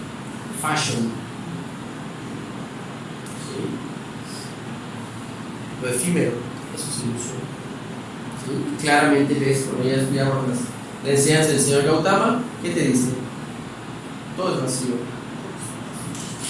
Fashion. ¿Sí? Lo efímero, eso es ilusión. ¿Sí? Claramente ves, cuando ya estudiamos la enseñanza del señor Gautama, ¿qué te dice? Todo es vacío.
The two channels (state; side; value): identical; both; correlation 1.00